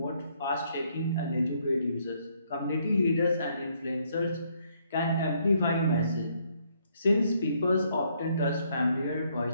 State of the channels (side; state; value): both; inverted; correlation -0.70